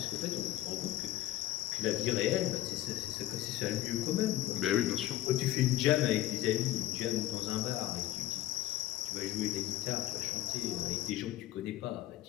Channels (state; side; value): quieter; right; 14.5 dB